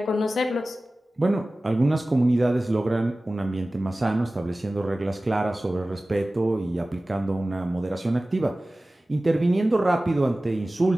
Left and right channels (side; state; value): both; normal; correlation 0.97